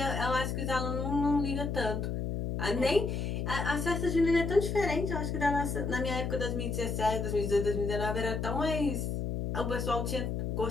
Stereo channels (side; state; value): left; noise; hum, 2 dB below the sound